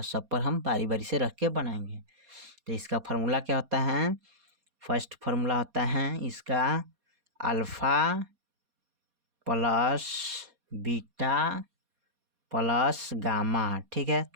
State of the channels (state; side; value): late; left; 4.2 ms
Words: सब पर हम बारी बारी से रख के बनाएंगे। तो इसका फार्मूला क्या होता है, फर्स्ट फार्मूला होता है इसका alpha plus beta plus gamma, ठीक है।